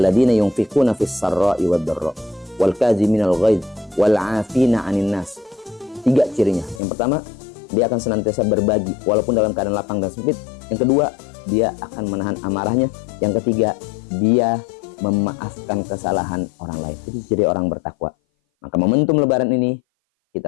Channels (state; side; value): drops out; right; at 6.8 s